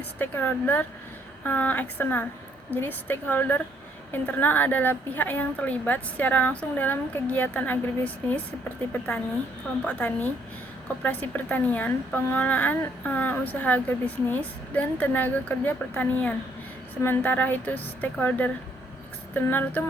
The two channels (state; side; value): normal; both; correlation 0.68